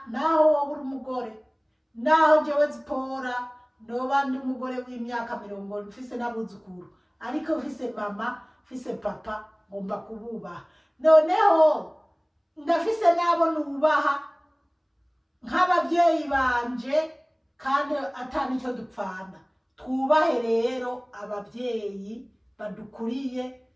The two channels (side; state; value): both; identical; correlation 1.00